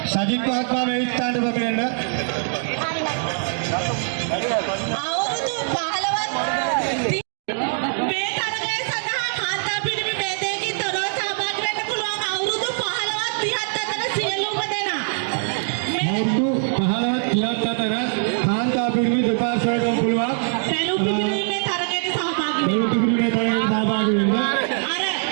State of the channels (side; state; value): left; silent; digital silence